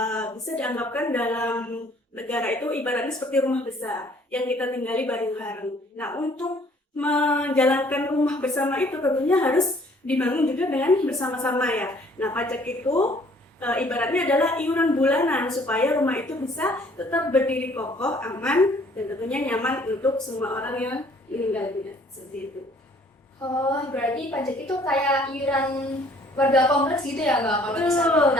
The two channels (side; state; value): both; normal; correlation 0.59